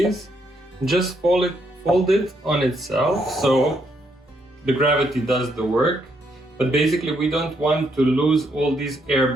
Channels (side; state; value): both; normal; correlation 0.75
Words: Just fold it on itself, so the gravity does the work. But basically we don't want to lose all these air